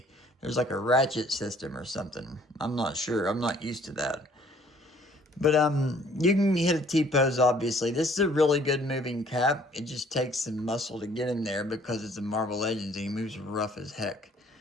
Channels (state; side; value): normal; both; correlation 0.59